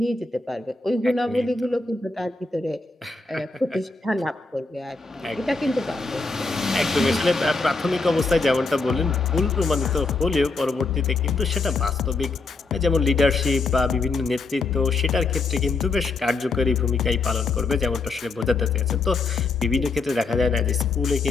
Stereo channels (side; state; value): right; quieter; 3.8 dB